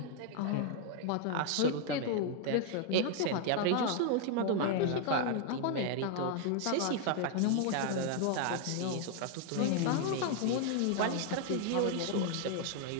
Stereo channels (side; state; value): both; different; correlation 0.00